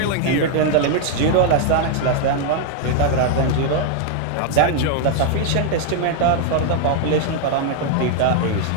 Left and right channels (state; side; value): different; both; correlation 0.00